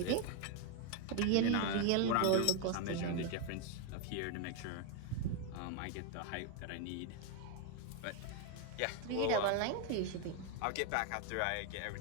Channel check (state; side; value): different; both; correlation 0.01